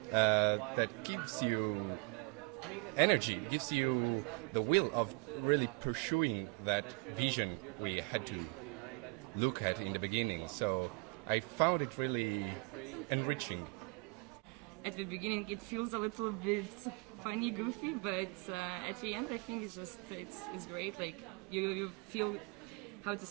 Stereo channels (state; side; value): quieter; left; 30.5 dB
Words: that gives you energy, gives you the will of really pursuing that vision we had to look at in the beginning. So I found it really enriching. At the beginning it feels a little bit funny, goofy, but at the end I think it's great. Like you feel, how to